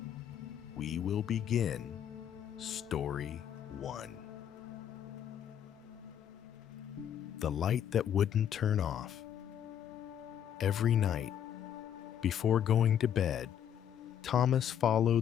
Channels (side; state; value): right; quieter; 9.5 dB